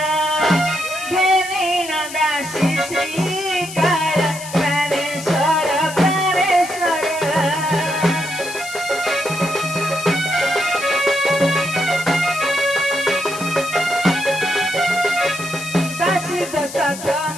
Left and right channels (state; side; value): noise; left; hiss, 12 dB below the sound